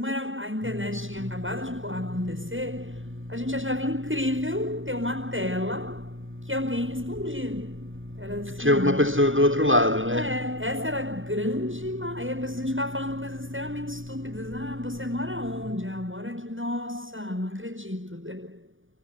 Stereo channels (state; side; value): late; left; 0.57 ms